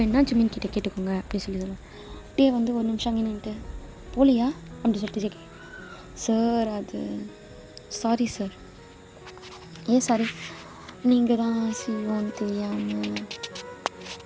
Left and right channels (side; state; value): both; identical; correlation 1.00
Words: ஜிமின் கிட்டே கேட்டுக்கோங்க அப்படி சொல்லி சொல்லுவேன். டே வந்து ஒரு நிமிஷம் அங்கே நின்றுட்டு போலியா அப்படி சொல்லிட்டு ஜேகே. சார் அது சாரி சார். ஏன் சாரி? நீங்கள் தான் செய்வோன்னு தெரியாமல்.